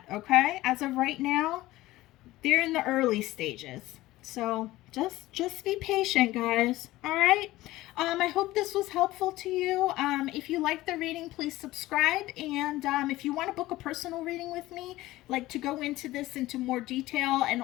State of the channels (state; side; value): quieter; right; 17.3 dB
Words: okay? As of right now, they're in the early stages. So just be patient, guys. All right. I hope this was helpful to you. If you like the reading, please subscribe. And if you want to book a personal reading with me, like to go into this into more detail and